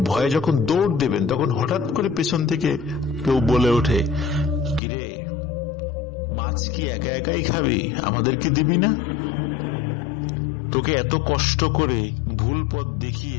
ভয়ে যখন দৌড় দেবেন তখন হঠাৎ করে পেছন থেকে কেউ বলে ওঠে, কিরে মাছ কি একা একাই খাবি, আমাদেরকে দিবি না? তোকে এত কষ্ট করে ভুল পথ দেখিয়ে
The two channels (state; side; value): drops out; right; at 4.8 s